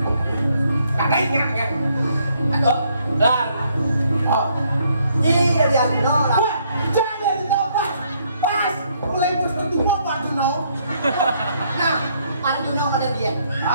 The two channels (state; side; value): inverted; both; correlation -0.70